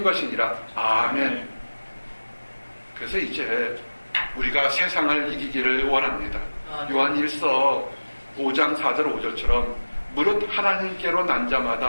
것이니라. 아멘. 그래서 이제 우리가 세상을 이기기를 원합니다. 요한 1서 5장 4절 5절처럼 무릇 하나님께로 난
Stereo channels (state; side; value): inverted; both; correlation -1.00